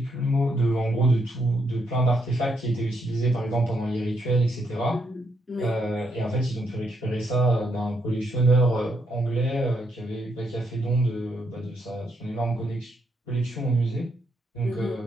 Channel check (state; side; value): normal; both; correlation 0.77